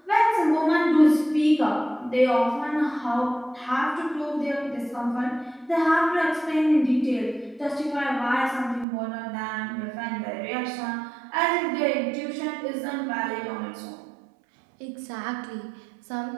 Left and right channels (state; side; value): drops out; left; at 8.8 s